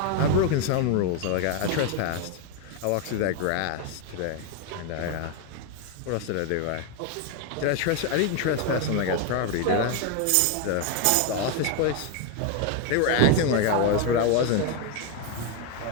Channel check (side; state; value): both; different; correlation 0.01